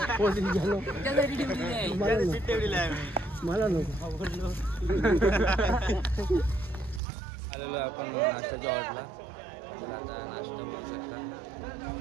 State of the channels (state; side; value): drops out; left; at 7.0 s